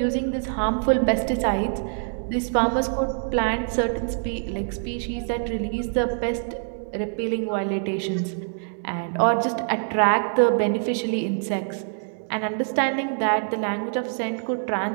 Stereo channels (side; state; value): left; silent; digital silence